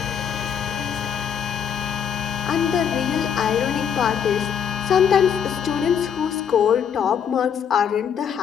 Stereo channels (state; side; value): quieter; right; 7.9 dB